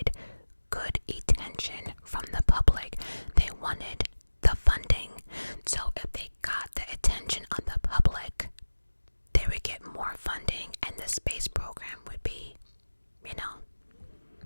good attention from the public. They wanted the funding. So if they got the attention of the public, they would get more funding and the space program would be,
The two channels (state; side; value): inverted; both; correlation -1.00